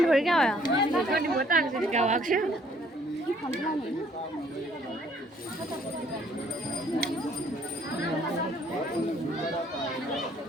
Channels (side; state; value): both; normal; correlation 0.62